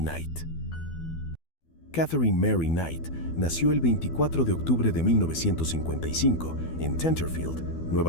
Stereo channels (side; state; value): right; late; 12 ms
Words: Knight. Catherine Mary Knight nació el 24 de octubre de 1955 en Tenterfield,